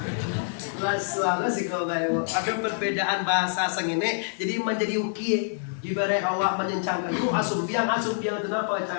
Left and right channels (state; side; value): silent; right; digital silence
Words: Lalu sih kau bayu. Ada perbedaan bahasa sengene. Jadi menjadi uki. Ibarat awak menyencangkan itu asum biang itu kenapa